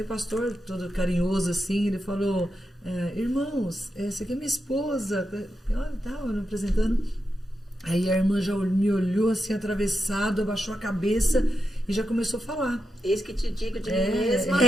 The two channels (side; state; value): both; normal; correlation 0.87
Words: o pastor, todo carinhoso assim, ele falou: irmãos, essa aqui é minha esposa. Tava me apresentando. Aí a irmã já me olhou assim, atravessado, abaixou a cabeça e já começou a falar. Eis que te digo de mim mesma.